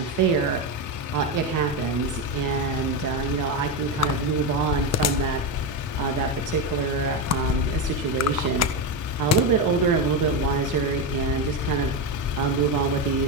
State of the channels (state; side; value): normal; both; correlation 0.12